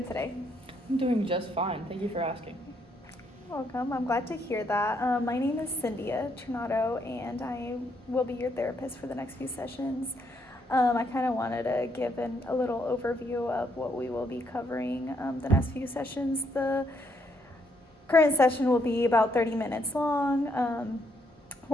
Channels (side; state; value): both; normal; correlation 0.74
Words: today? I'm doing just fine. Thank you for asking. Welcome, I'm glad to hear that. My name is Cynthia Trinado, and I will be your therapist for the next few sessions. I kind of wanted to give a little overview of what we will be covering the next few sessions. The current session will be about 30 minutes long,